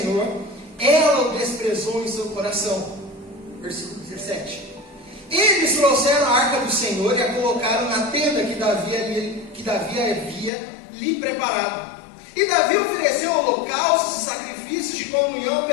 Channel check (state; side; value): drops out; right; at 10.5 s